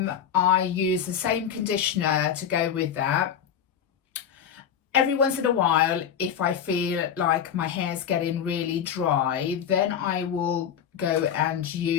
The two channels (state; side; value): quieter; right; 8.5 dB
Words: I use the same conditioner to go with that. Every once in a while, if I feel like my hair's getting really dry, then I will go and